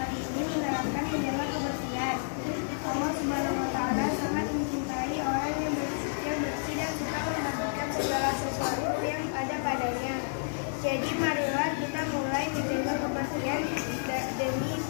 ini menerapkan menjaga kebersihan. Allah Subhanahu wa taala sangat mencintai orang yang bersih dan suka membagikan segala sesuatu yang ada padanya. Jadi marilah kita mulai menjaga kebersihan demi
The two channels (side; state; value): right; silent; digital silence